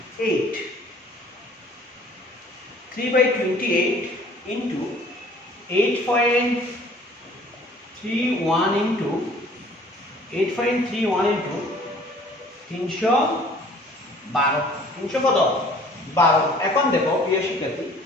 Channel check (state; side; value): normal; both; correlation 0.53